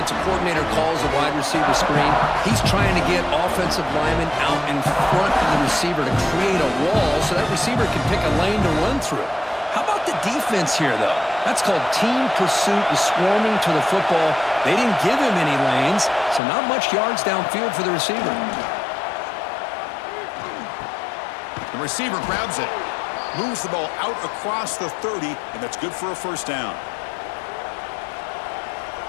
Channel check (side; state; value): right; drops out; at 16.4 s